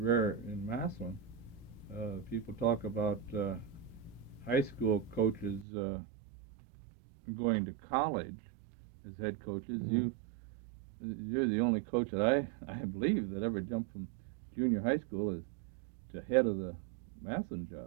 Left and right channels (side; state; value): left; drops out; at 5.7 s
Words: in Massillon. People talk about high school coaches going to college as head coaches. Mm-hmm. You're the only coach that I believe that ever jumped from junior high school to head of the Massillon